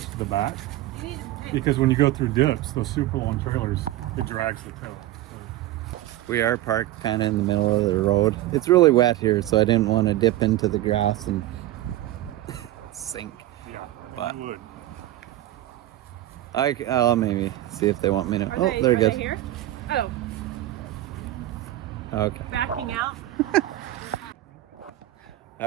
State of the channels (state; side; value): quieter; left; 15.2 dB